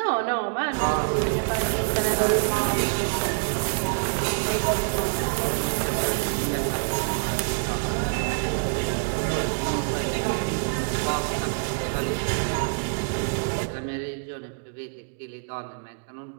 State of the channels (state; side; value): silent; left; digital silence